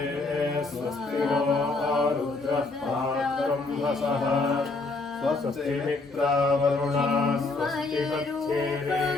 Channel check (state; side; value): quieter; right; 3.5 dB